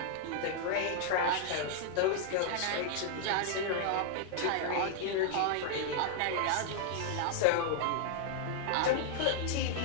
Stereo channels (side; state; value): both; different; correlation -0.01